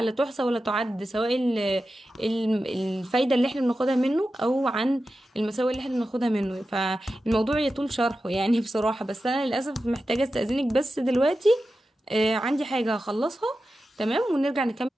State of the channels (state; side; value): normal; both; correlation 0.92